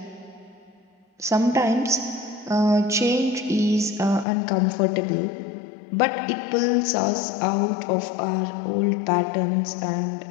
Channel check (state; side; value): drops out; right; at 4.2 s